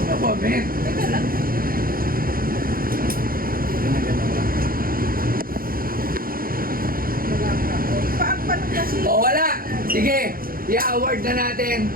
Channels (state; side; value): late; left; 0.42 ms